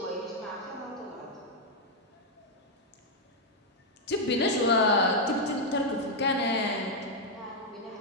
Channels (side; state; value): both; normal; correlation -0.01